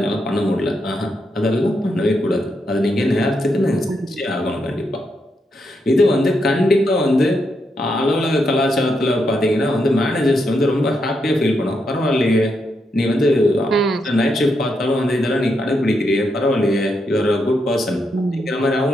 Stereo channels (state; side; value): normal; both; correlation 0.82